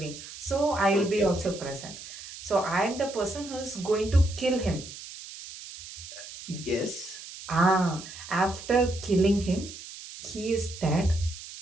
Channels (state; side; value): noise; right; hiss, 13 dB below the sound